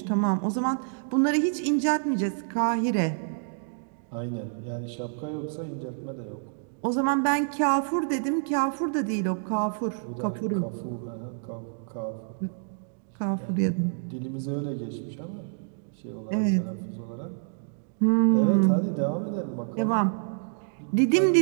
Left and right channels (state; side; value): silent; left; digital silence